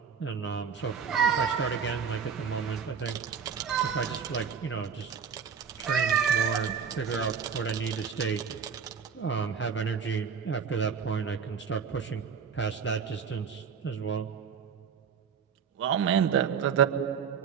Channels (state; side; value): quieter; left; 6.7 dB